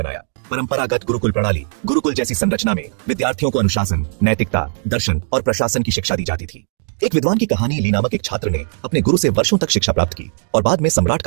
परंपरागत गुरुकुल प्रणाली, गुरुकुल जैसी संरचना में विद्यार्थियों को अनुशासन, नैतिकता, दर्शन और प्रशासन की शिक्षा दी जाती थी। एक विद्वान की कहानी ली नामक एक छात्र ने अपने गुरु से वर्षों तक शिक्षा प्राप्त की और बाद में सम्राट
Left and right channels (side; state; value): left; silent; digital silence